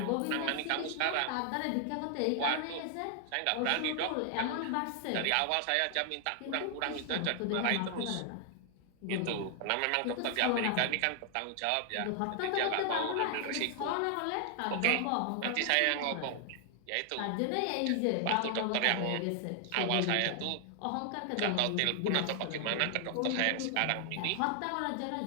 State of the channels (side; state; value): both; different; correlation 0.00